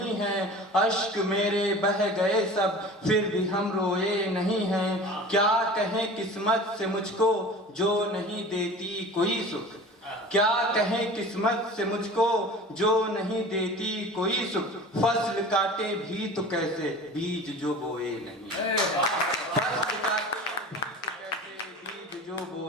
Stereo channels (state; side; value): normal; both; correlation 0.39